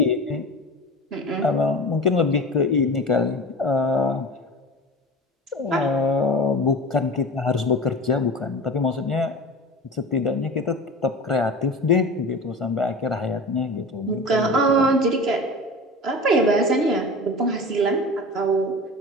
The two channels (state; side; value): normal; both; correlation 0.33